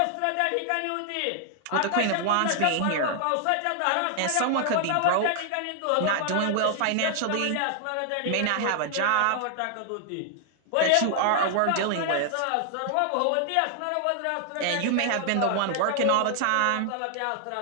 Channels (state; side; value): different; both; correlation 0.00